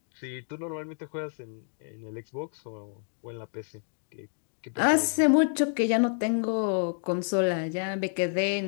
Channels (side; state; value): right; silent; 59 dB below the other